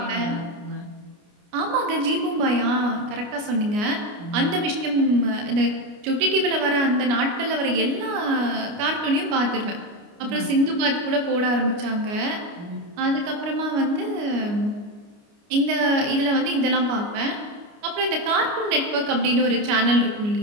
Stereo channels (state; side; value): late; left; 29 ms